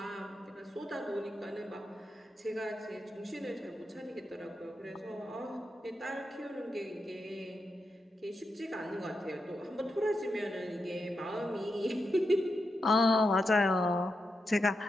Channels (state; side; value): normal; both; correlation 0.86